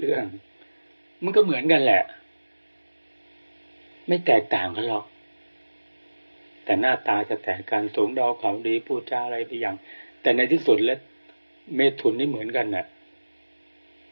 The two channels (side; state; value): both; inverted; correlation -1.00